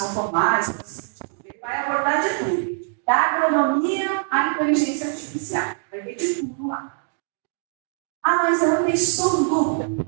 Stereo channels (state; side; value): silent; left; 61 dB below the other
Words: não formais. Ele vai abordar de tudo. Da agronomia à inteligência artificial. Vai ver de tudo lá. Mas eu não estou em dúvida.